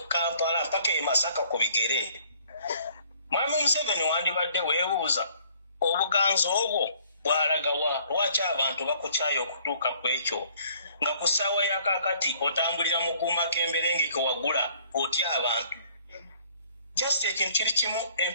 Kampala mpaka e Masaka ku bigere Mwami Museveni wandibadde weebuuza obuganzo obwo bwalagawa lwaki abantu bakukyayo okutuuka ku ekyo nga ku ssaawa ya kaakati otambulira mu kuumakemberenge ke wagula otya abantu just ekintu kiri kimu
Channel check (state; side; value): inverted; both; correlation -0.59